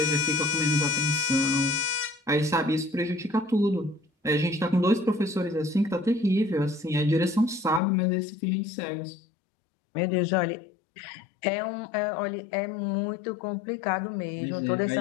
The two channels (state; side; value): drops out; right; at 7.8 s